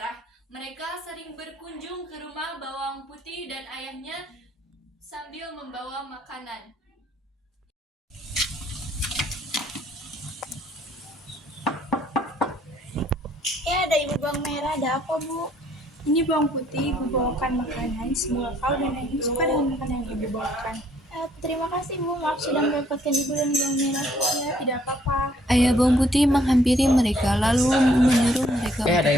Mereka sering berkunjung ke rumah Bawang Putih dan ayahnya sambil membawa makanan. Ada ibu Bawang Merah, ada apa bu? Ini Bawang Putih, ibu bawakan makanan. Semoga kau dan ayahmu suka dengan makanan yang ibu bawakan. Terima kasih bu, maaf sudah merepotkan ibu dan Bawang Merah. Ya, tidak apa-apa. Ayah Bawang Putih menghampiri mereka, lalu menyuruh mereka. Ada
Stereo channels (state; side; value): normal; both; correlation 0.65